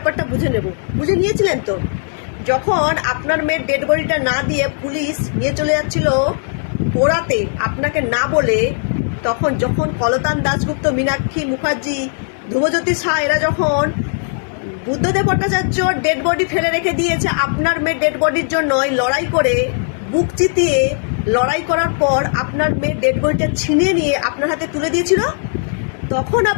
বুঝে নেব। বুঝে নিয়েছিলেন তো? যখন আপনার মেয়ের ডেড বডিটা না দিয়ে পুলিশ নিয়ে চলে যাচ্ছিল পোড়াতে আপনাকে না বলে, যখন কলতান দাশগুপ্ত, মীনাক্ষী মুখার্জি, ধ্রুবজ্যোতি শাহ এরা যখন বুদ্ধদেব ভট্টাচার্য ডেড বডি ফেলে রেখে দিয়েছে আপনার মেয়ের ডেড বডির জন্য, লড়াই করে বুক চিতিয়ে লড়াই করার পর আপনার মেয়ের ডেড বডিটা ছিনিয়ে নিয়ে আপনার হাতে তুলে দিয়েছিল, তখন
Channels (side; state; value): right; silent; digital silence